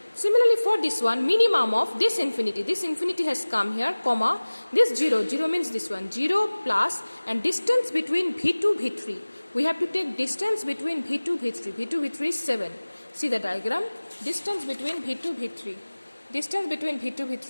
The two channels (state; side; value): inverted; both; correlation -1.00